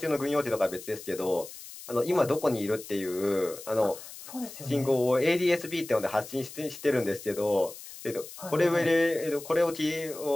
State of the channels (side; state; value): left; noise; hiss, 14 dB below the sound